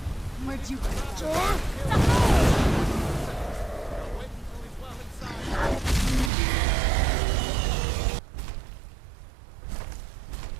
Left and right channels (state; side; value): drops out; left; at 6.3 s